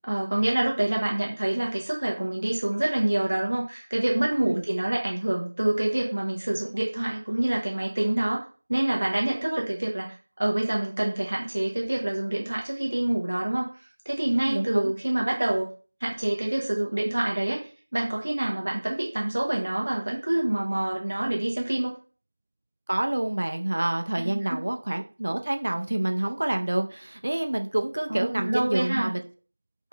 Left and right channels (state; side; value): inverted; both; correlation -1.00